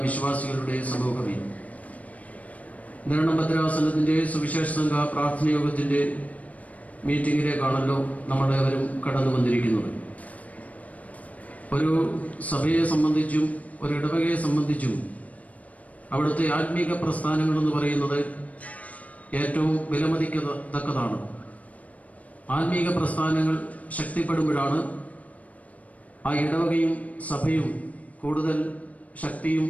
വിശ്വാസികളുടെ സമൂഹമേ, നിരണം ഭദ്രാസനത്തിൻ്റെ സുവിശേഷ സംഘ പ്രാർത്ഥനയോഗത്തിൻ്റെ മീറ്റിങ്ങിലേക്കാണല്ലോ നമ്മളേവരും കടന്നു വന്നിരിക്കുന്നത്. ഒരു സഭയെ സംബന്ധിച്ചും ഒരു ഇടവകയെ സംബന്ധിച്ചും അവിടുത്തെ ആത്മീക പ്രസ്ഥാനങ്ങളെന്ന് പറയുന്നത് ഏറ്റവും വിലമതിക്കത്തക്കതാണ്. ആത്മീക പ്രസ്ഥാനങ്ങൾ ശക്തിപ്പെടുമ്പോഴാണ് ആ ഇടവകയും സഭയും കൂടുതൽ ശക്തിയും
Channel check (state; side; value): late; right; 0.070 ms